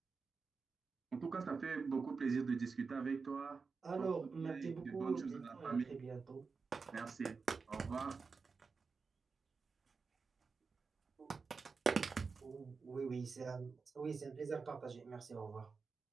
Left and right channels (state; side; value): quieter; left; 4.8 dB